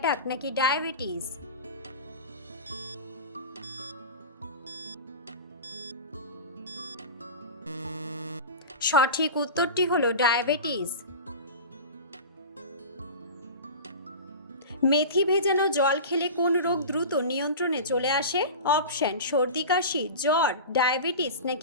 নাকি ডায়াবেটিস। সঠিক উত্তরটি হলো ডায়াবেটিস। মেথি ভেজানো জল খেলে কোন রোগ দ্রুত নিয়ন্ত্রণে চলে আসে? অপশন: সর্দি কাশি, জ্বর, ডায়াবেটিস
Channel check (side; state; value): both; inverted; correlation -0.30